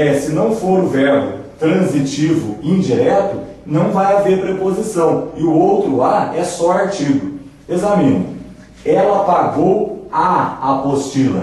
se não for o verbo transitivo indireto, não vai haver preposição. E o outro a é só artigo. Examine. Ela pagou a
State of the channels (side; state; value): both; identical; correlation 1.00